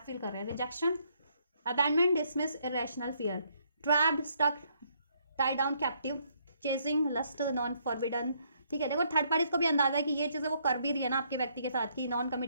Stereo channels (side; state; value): both; inverted; correlation -0.70